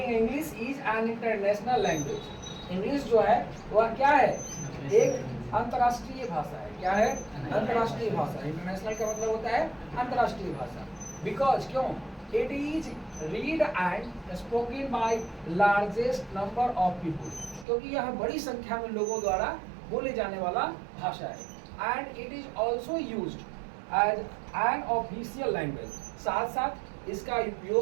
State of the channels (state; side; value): drops out; left; at 17.7 s